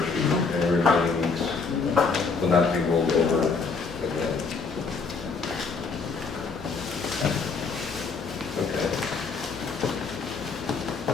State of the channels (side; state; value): right; quieter; 4.8 dB